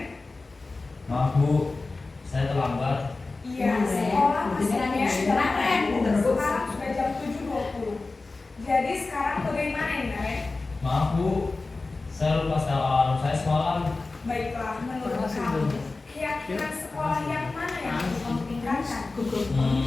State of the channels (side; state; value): right; quieter; 3.6 dB